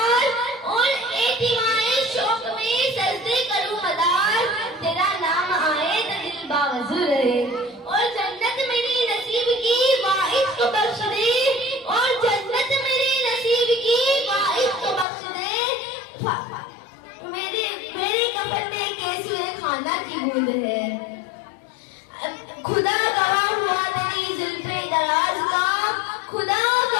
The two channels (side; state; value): right; drops out; at 15.1 s